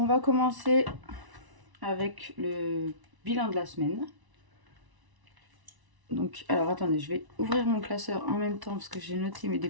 va commencer avec le bilan de la semaine. Donc, alors attendez, je vais ouvrir mon classeur en même temps parce que j'ai noté mes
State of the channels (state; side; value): late; left; 1.0 ms